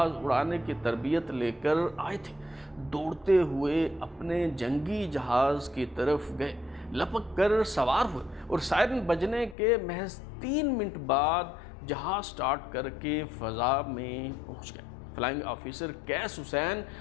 اڑانے کی تربیت لے کر آئے تھے، دوڑتے ہوئے اپنے جنگی جہاز کی طرف گئے، لپک کر سوار ہوئے اور سائرن بجنے کے محض 3 منٹ بعد جہاز سٹارٹ کر کے فضا میں پہنچ گئے۔ فلائنگ آفیسر کیس حسین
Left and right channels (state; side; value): drops out; right; at 9.6 s